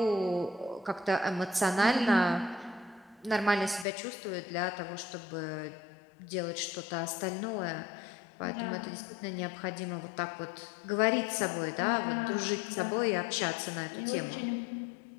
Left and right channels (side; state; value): right; drops out; at 3.9 s